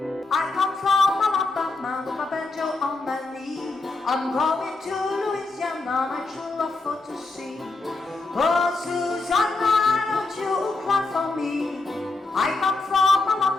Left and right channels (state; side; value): quieter; right; 3.4 dB